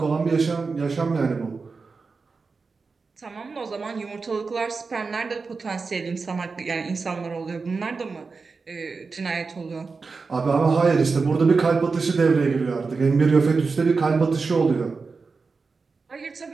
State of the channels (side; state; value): left; quieter; 4.5 dB